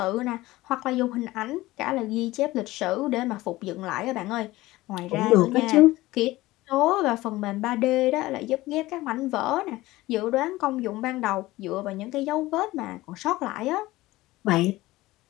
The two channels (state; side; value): quieter; right; 18.3 dB